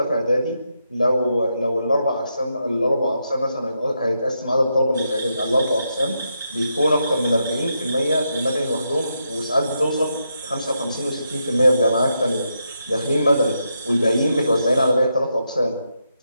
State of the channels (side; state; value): both; inverted; correlation -0.83